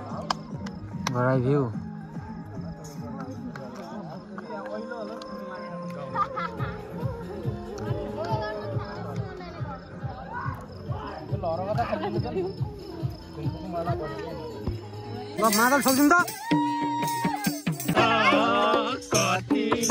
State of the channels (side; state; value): both; identical; correlation 1.00